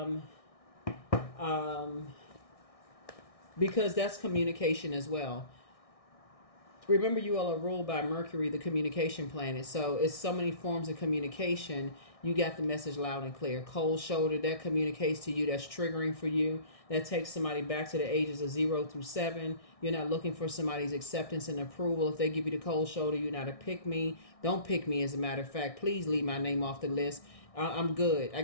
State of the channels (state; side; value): late; right; 1.6 ms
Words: because that's communication as well. Remember, you all are ruled by Mercury, the communication planet. So it's so many forms of communication. You got the message loud and clear. Cold shoulder, that communicates to you. That's triggering for you. That takes somebody back to the ages of 0 through 7. You're not looking for somebody's acceptance and approval. If they give you the cold shoulder, you're not a pick me. Don't pick me, as a matter of fact. Please leave my name off the list. I'm good. I